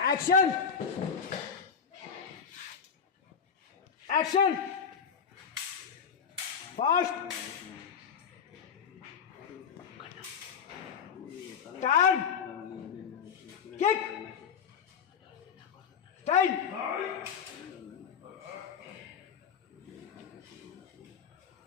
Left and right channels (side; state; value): right; quieter; 6.9 dB